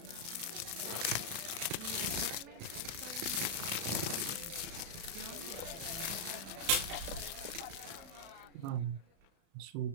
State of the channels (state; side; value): late; left; 36 ms